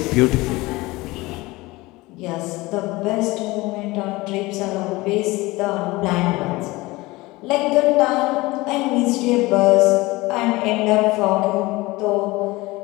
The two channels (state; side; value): quieter; right; 21.1 dB